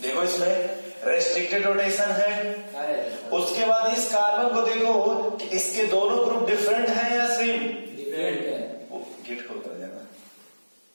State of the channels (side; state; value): both; inverted; correlation -1.00